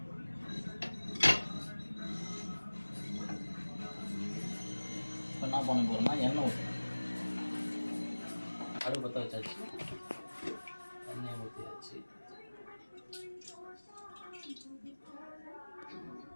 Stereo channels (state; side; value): inverted; both; correlation -1.00